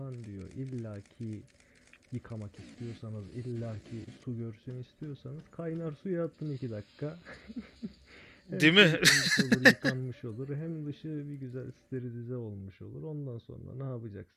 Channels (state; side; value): identical; both; correlation 1.00